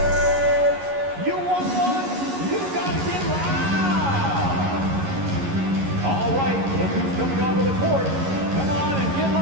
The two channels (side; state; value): left; late; 11 ms